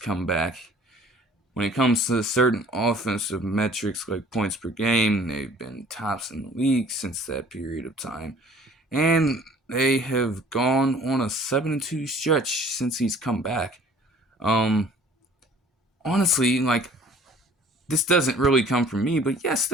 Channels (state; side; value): normal; both; correlation 0.52